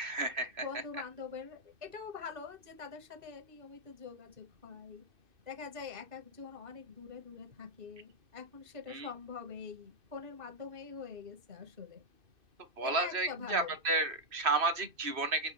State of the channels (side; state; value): left; late; 2.6 ms